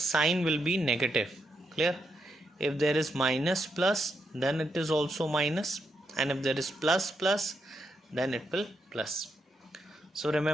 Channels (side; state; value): both; normal; correlation 0.82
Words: will be negative. Clear? If there is minus plus, then it is also minus, and if there is plus plus, then it will plus. So